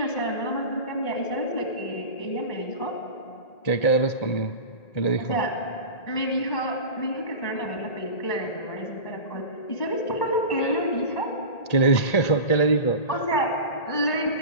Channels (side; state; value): right; late; 1.8 ms